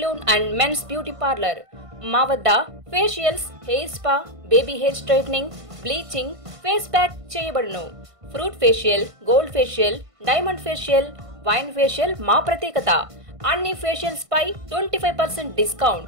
and men's beauty parlour. మా వద్ద facials, hair spa, baby hair straightening, bleaching, face pack చేయబడును. Fruit facial, gold facial, diamond facial, wine facial మా ప్రత్యేకత. అన్ని ఫేషియల్స్ పై 25%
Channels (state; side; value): late; left; 1.5 ms